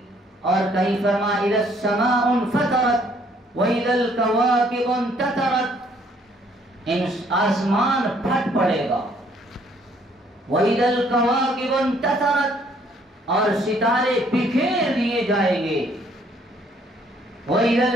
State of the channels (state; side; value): normal; both; correlation 0.64